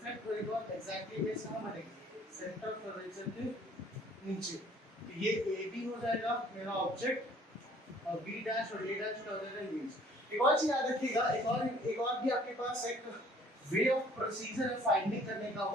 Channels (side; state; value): both; normal; correlation 0.56